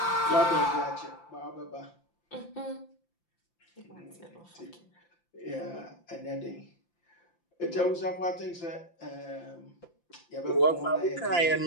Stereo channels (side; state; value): right; late; 5.8 ms